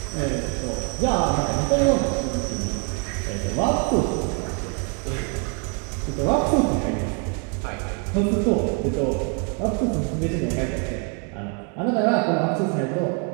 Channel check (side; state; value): left; quieter; 34.1 dB